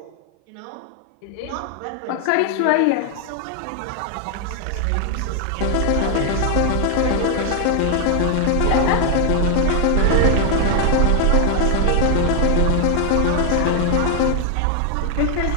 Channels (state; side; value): different; both; correlation 0.00